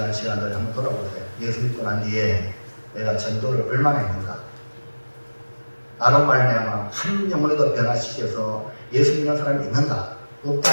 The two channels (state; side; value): inverted; both; correlation -1.00